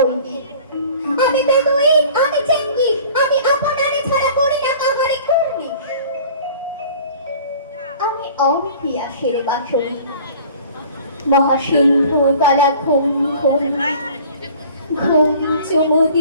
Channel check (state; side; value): inverted; both; correlation -0.47